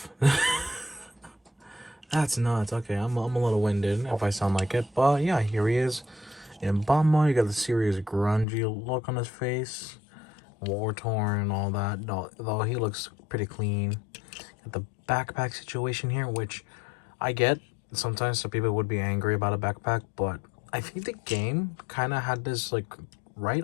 That's nuts. Okay, I'm a little winded if I sound like it. But yeah, here he is. In bot mode, you got the serious grungy look on his face. War-torn and all that. Though he looks pretty clean. Got the backpack situation here, which I get. Sometimes some people would be angry about a backpack, but I think the game kind of had this, like, right?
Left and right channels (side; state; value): right; drops out; at 8.5 s